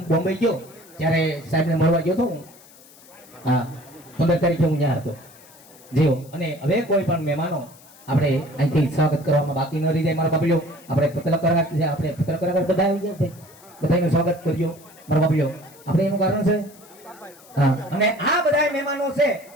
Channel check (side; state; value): left; noise; hiss, 24 dB below the sound